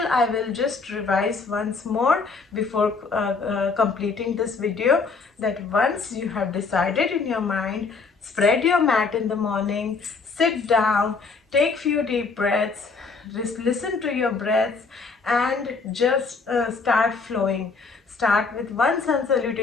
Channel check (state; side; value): quieter; right; 4.5 dB